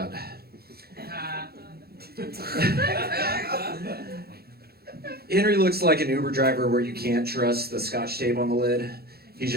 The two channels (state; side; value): late; left; 0.46 ms